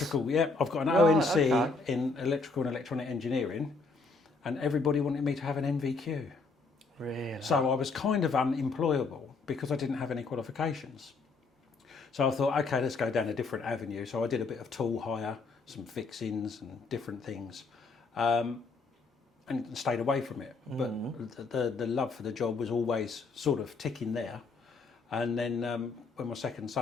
yeah. I've got an ONC in electrical and electronic engineering, and everybody wanted me to have an NVQ. Really? So I was kind of unemployable because I didn't have any qualifications. So I thought, okay, let's go down a different avenue. So I did a bit of tool hire, some fixings and different things, and stayed away from it. But the love for the job was always sort of ticking there. And then when my second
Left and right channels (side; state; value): right; quieter; 4.0 dB